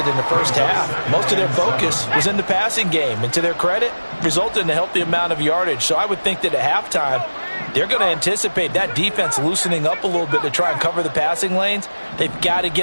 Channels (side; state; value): both; inverted; correlation -1.00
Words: in the first half, most of their focus was in the passing game. And to their credit, resulted in a healthy amount of yardage. So I would think that at halftime, they're going to anticipate that defense loosening up a little bit to try and cover the passing lanes. They've got to